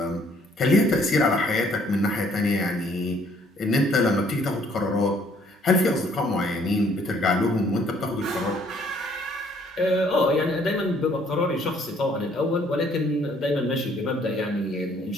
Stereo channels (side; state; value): both; normal; correlation 0.63